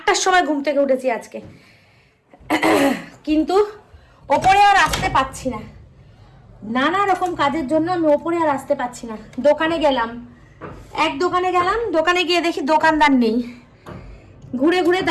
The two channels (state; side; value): identical; both; correlation 1.00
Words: সময় ঘুম থেকে উঠেছি আজকে। কিন্তু ওপরে আর আসতে পারছি না, নানা রকম কাজের জন্য আমি ওপরে আর আসতে পারছি না। দোকানে গেলাম, দোকানে গিয়ে দেখি দোকানদার নেই। ঘুরে ঘুরে